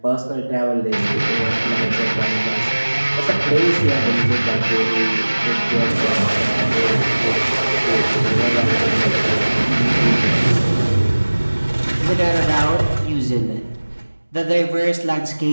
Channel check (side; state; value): both; inverted; correlation -1.00